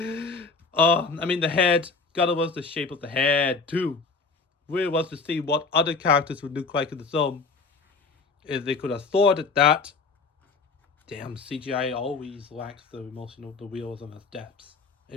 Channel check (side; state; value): right; quieter; 4.4 dB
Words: head. Gotta love the shape of the head too. Really wants to see what other characters would look like in the film. If they could afford it that. Damn, CGI always lacks the emotional, the realism of depth.